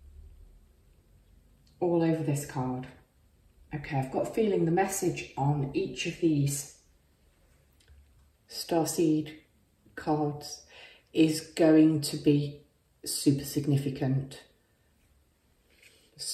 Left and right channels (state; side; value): identical; both; correlation 1.00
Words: all over this card. Okay, I've got a feeling the message on each of these starseed cards is going to be super significant.